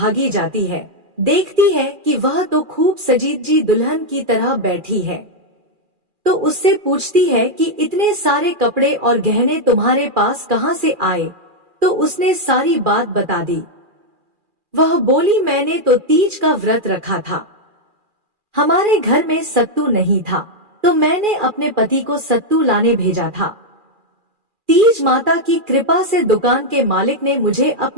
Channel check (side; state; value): left; late; 2.4 ms